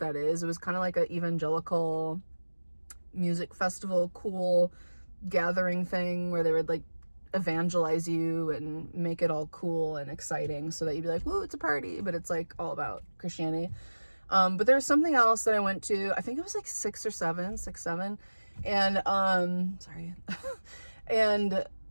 is. It was kind of like an evangelical music festival, cool gathering thing where they would like evangelize you and make it all cool and exciting so that you'd be like, woo, it's a party, but it's like all about Christianity. But there was something else that I went to, I think it was like 6 or 7, and sorry. And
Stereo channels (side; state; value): both; inverted; correlation -1.00